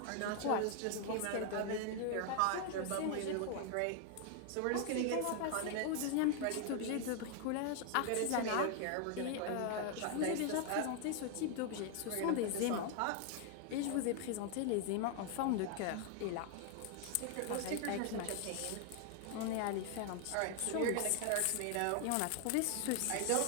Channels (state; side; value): different; both; correlation 0.00